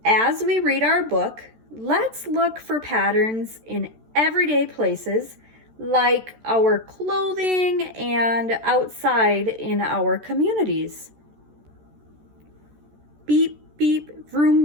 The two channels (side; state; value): left; late; 13 ms